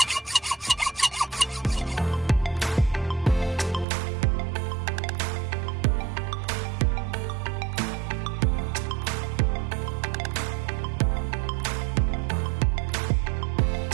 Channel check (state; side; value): drops out; left; at 3.9 s